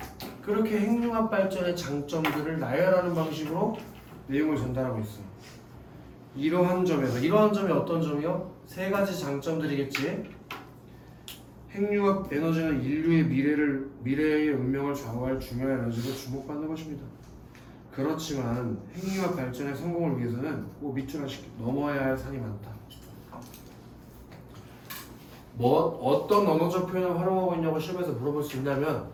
그렇게 핵융합 발전의 장점들을 나열하는 방식으로 내용을 전달하고 있어. 이러한 점에서 이러한 점이 어떤 점이요? 세 가지 장점들이겠지. 핵융합 에너지는 인류의 미래의 운명을 좌우할 중요한 에너지로 주목받는 것입니다. 그렇지만 핵융합 발전의 성공을 위해서는 꼭 밑줄 하나씩 넘어야 할 산이 많다. 뭐 어떤 언어적 표현을 활용하고 있냐고 시험에서 물어볼 수 있냐면,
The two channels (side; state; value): both; identical; correlation 1.00